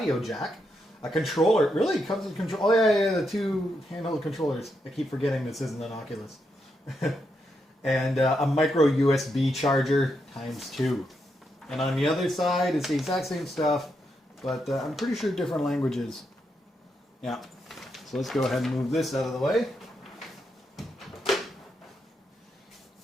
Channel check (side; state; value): both; normal; correlation 0.82